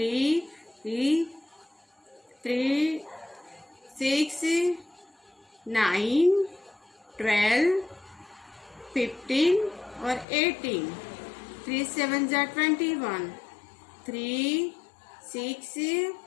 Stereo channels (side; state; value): right; drops out; at 10.2 s